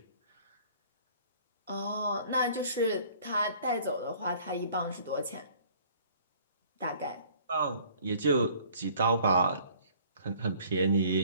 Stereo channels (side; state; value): both; inverted; correlation -0.55